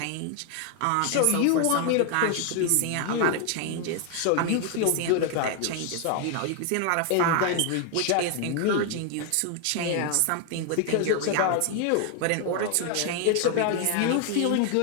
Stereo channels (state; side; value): different; both; correlation 0.00